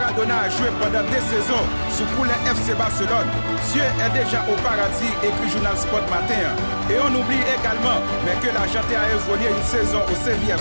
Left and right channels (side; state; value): both; inverted; correlation -1.00